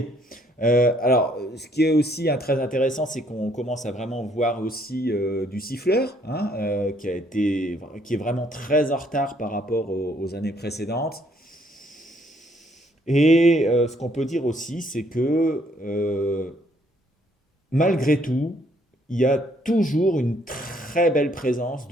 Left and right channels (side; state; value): both; normal; correlation 0.67